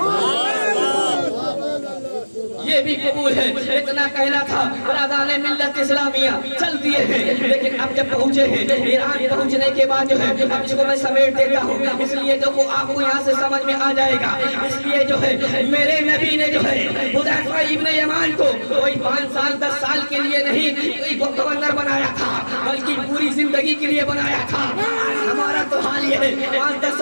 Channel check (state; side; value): inverted; both; correlation -1.00